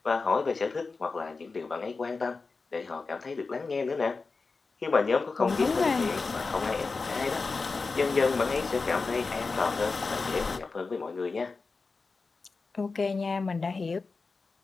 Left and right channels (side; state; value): right; quieter; 4.2 dB